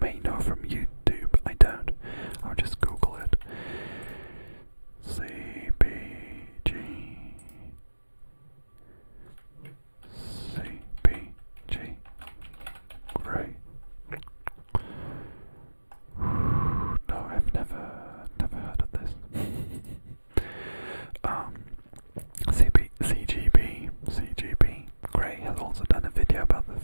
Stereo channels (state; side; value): inverted; both; correlation -1.00